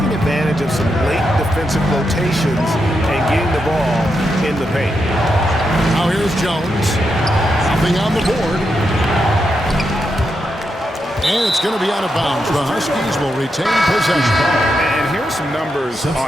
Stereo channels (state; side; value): normal; both; correlation 0.84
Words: advantage of some late defensive rotations and getting the ball in the paint. Now here's Jones. Nothing on the board. And it's going to be out of bounds. The Huskies will retain possession. And here's some numbers